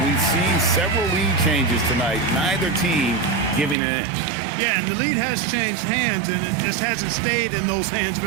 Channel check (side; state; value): left; drops out; at 3.8 s